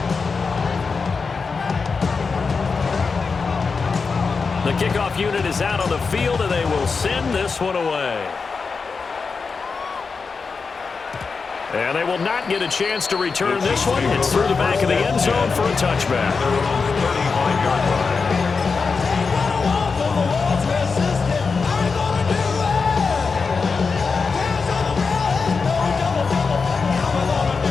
The kickoff unit is out on the field, and they will send this one away. And they will not get a chance to return this one. It's through the back of the end zone for a touchback. 35-yard line.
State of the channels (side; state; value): right; quieter; 4.9 dB